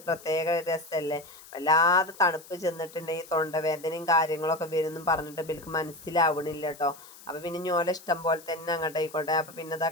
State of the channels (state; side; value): noise; left; hiss, 20 dB below the sound